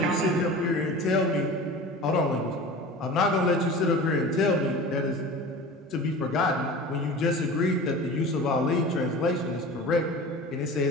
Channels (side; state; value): both; normal; correlation 0.36